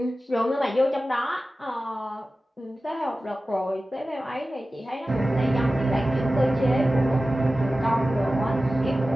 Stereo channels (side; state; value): both; normal; correlation 0.95